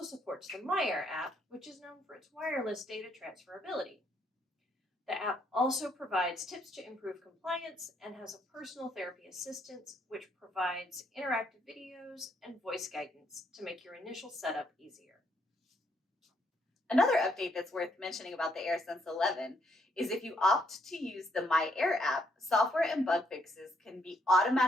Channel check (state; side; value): normal; both; correlation 0.72